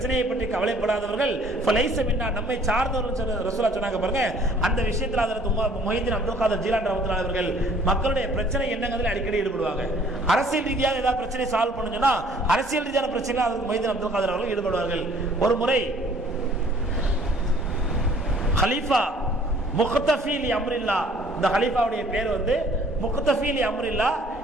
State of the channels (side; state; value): both; normal; correlation 0.57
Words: பற்றி கவலைப்படாதவர்கள் ஃபலைஸ மின்னா, நம்மை சார்ந்தவர்கள் ரசூலுல்லாஹ் சொன்னாங்க பாருங்க. அந்த விஷயத்தில் அதற்கு மொய்தீன் அப்துல் காதர் ஜீலானி ரஹ்மத்துல்லாஹி அவர்கள் மக்களுடைய பிரச்சனை என்னங்கிறதுல அடிக்கடி ஈடுபடுவாங்க. அரசியல் ரீதியாக ஏதாவது பிரச்சனை சால்வ் பண்ணுங்கன்னா அரசியல் ரீதியான பிரச்சனை அதுக்கு மொய்தீன் அப்துல் காதர் அவர்கள் ஈடுபடுவார்கள். ஒரு முறை ஹலீஃபா முக்தஃபி லி அம்ரில்லா, இந்த ஹலீஃபாவுடைய பேர் வந்து முக்தஃபி லி அம்ரில்லா.